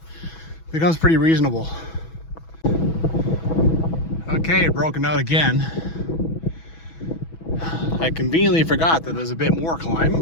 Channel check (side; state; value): right; late; 6.1 ms